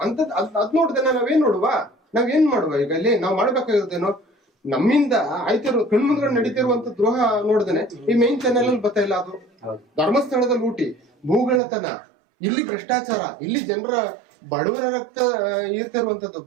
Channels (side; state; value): left; drops out; at 11.6 s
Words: ಅದ್ ನೋಡ್ದೆ ನಾವೇನ್ ನಾವೇನ್ ಮಾಡುವ? ಈಗ ಇಲ್ಲಿ ನಾವ್ ಮಾಡ್ಬೇಕಾಗಿರೋದೇನೋ, ನಮ್ಮಿಂದ ಆಯ್ತಿರೋ ಕಣ್ಮುಂದ್ಗಡೆ ನಡೀತಿರುವಂತ ದ್ರೋಹ ನೋಡ್ದೇನೆ ಈ ಮೈನ್ ಚಾನೆಲ್ ಅಲ್ಲಿ ಬರ್ತಾ ಇಲ್ಲ. ಅದು ಧರ್ಮಸ್ಥಳದ ಲೂಟಿ, ಭೂಗಳತನ, ಇಲ್ಲಿ ಭ್ರಷ್ಟಾಚಾರ, ಇಲ್ಲಿ ಜನರ ಬಡವರ ರಕ್ತ ಇರ್ತಿರುವಂತದ್ದು,